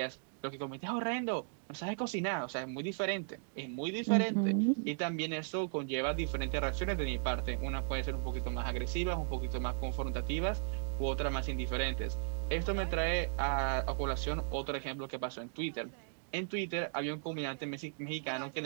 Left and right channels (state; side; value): silent; left; digital silence